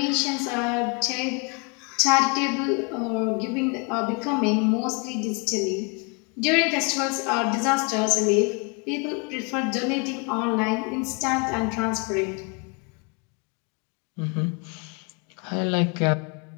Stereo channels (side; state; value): right; quieter; 32.9 dB